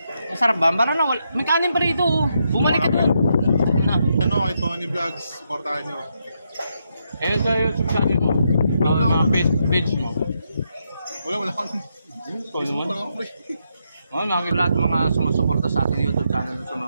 Masarap ba? Parang na, may kanin pa rito, oh. Bumalik ka doon. Ano, kay Tony Vlogs, supportahan nyo. Ayun sa YouTube channel mo. Mga page mo. Wala akong. Facebook lang ako, Mga lahat mga sumusuporta sa ating YouTube channel.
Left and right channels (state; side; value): inverted; both; correlation -0.80